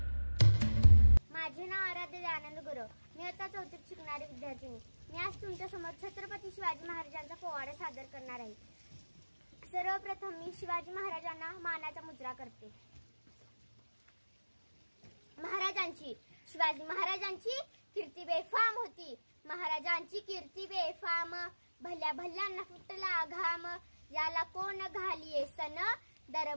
माझे नाव आराध्य आनंद गुरव। मी आता चौथीत शिकणारी विद्यार्थिनी। मी आज तुमच्या समोर छत्रपती शिवाजी महाराजांचा पोवाडा सादर करणार आहे। सर्वप्रथम मी शिवाजी महाराजांना मानाचा मुजरा करते। शिवाजी महाराजांची कीर्ती बेफाम होती। महाराजांची कीर्ती बेफाम, भल्या भल्यांना फुटला घाम। याला कोण घालिये सन,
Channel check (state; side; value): inverted; both; correlation -1.00